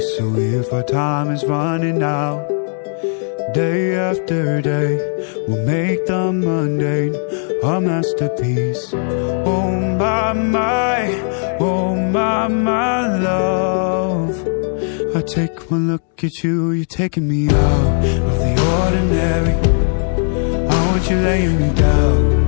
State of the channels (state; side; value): silent; right; digital silence